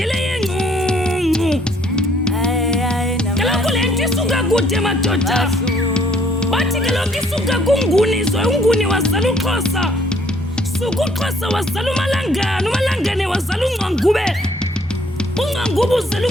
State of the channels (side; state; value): both; normal; correlation 0.64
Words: yengqungqu. Kaloku le nto isuka kude madoda. Bathi kaloku isuka kunguni unguni wazala uXhosa. Suka uXhosa wazala uMalangane, uMalangane wazala uNgqangube. uNgqangube uzala